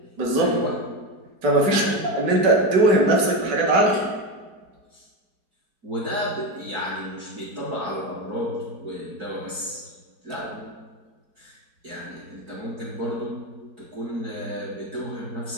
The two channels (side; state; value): left; late; 4.7 ms